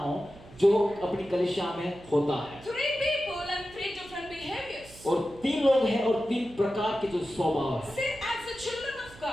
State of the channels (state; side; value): noise; right; hum, 21 dB below the sound